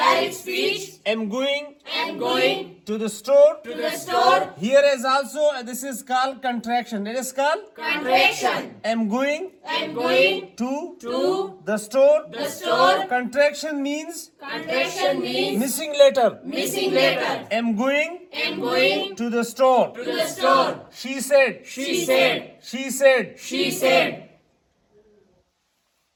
I'm going to the store. Here is also, this is called contraction. It is called I'm going to the store. Contraction means missing letter. I'm going to the store. She said.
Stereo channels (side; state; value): both; identical; correlation 1.00